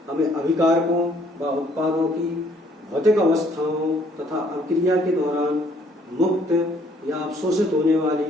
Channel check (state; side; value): normal; both; correlation 0.63